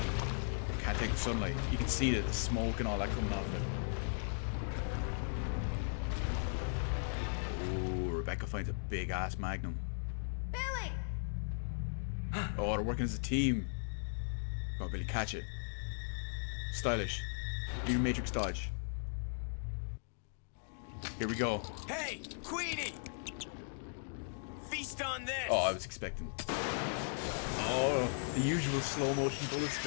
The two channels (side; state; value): right; silent; digital silence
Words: Can't can't take the sunlight. You can see the smoke and all that coming off it. Oh, Rebecca finds a big ass magnum. Billy! Oh, they're working as a team. Come on, Billy, catch it. Stylish. Do your matrix dodge. Here we go. Hey, Queenie! Feast on this! Oh, I was expecting. Oh, the usual slow motion bullet